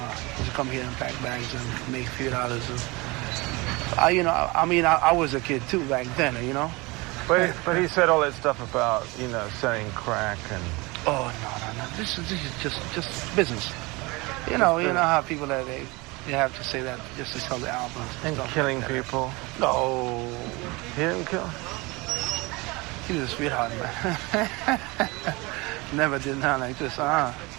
used to come here and pack bags and make $few. I was a kid too back then. You know. But he said all that stuff about, selling crack and... Oh, no. This is just business. You know how people that they have to say that just to sell the albums. And killing people? No. He didn't kill? He was a sweetheart, man. Never did nothing like this. No,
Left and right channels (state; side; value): quieter; left; 24.6 dB